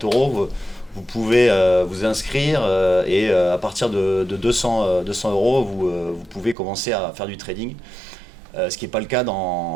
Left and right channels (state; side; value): drops out; left; at 6.6 s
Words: vous pouvez vous inscrire et à partir de 200 euros, vous pouvez commencer à faire du trading, ce qui n'est pas le cas